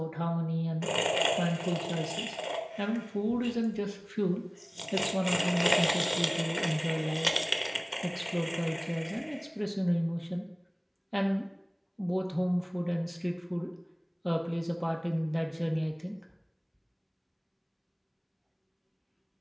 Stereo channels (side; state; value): both; identical; correlation 1.00